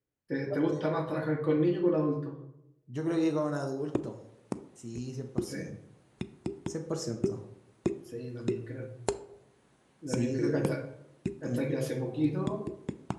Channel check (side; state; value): both; identical; correlation 1.00